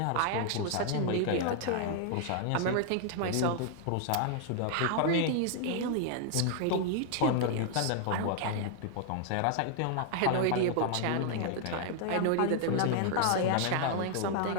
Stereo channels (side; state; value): both; different; correlation 0.00